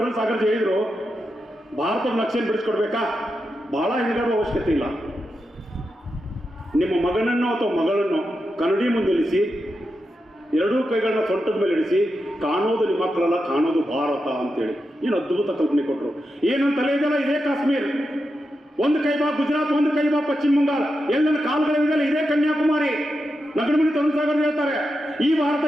ಸಾಗರ್ಜಿ ಹೇಳಿದ್ರು, ಭಾರತದ ನಕ್ಷೆಯನ್ನು ಬಿಡಿಸ್ಕೊಡ್ಬೇಕಾ, ಬಹಳ ಹೆಣಗಾಡುವ ಅವಶ್ಯಕತೆ ಇಲ್ಲ. ನಿಮ್ಮ ಮಗನನ್ನು ಅಥವಾ ಮಗಳನ್ನು ಕನ್ನಡಿ ಮುಂದೆ ಇಳಿಸಿ, ಎರಡೂ ಕೈಗಳನ್ನ ಸೊಂಟದ ಮೇಲೆ ಇಳಿಸಿ, ಕಾಣೋದು ನಿಮ್ಮ ಮಕ್ಕಳಲ್ಲ, ಕಾಣೋದು ಭಾರತ ಅಂತೇಳಿ ಏನು ಅದ್ಭುತ ಕಲ್ಪನೆ ಕೊಟ್ಟರು. ಏನಂತ ತಲೆ ಇದೆಯಲ್ಲ, ಇದೇ ಕಾಶ್ಮೀರ್, ಒಂದು ಕೈ ಬಾ ಗುಜರಾತ್, ಒಂದು ಕೈ ಬಾ ಪಶ್ಚಿಮ ಬಂಗಾಳ, ಎಲ್ಲೆಲ್ಲ ಕಾಲುಗಳಿದೆಯಲ್ಲ ಇದೇ ಕನ್ಯಾಕುಮಾರಿ. ನಗರಮಣಿ ತರುಣ್ ಸಾಗರ್ ಹೇಳ್ತಾರೆ, ಈ ಭಾರತ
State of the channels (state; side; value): normal; both; correlation 0.88